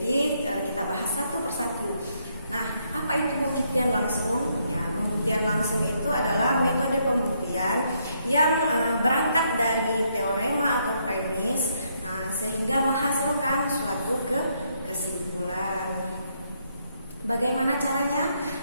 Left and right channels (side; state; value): both; inverted; correlation -0.74